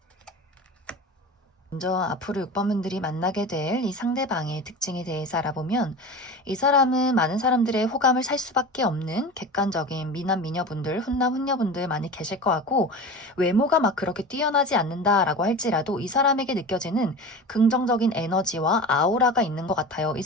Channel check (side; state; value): both; normal; correlation 0.32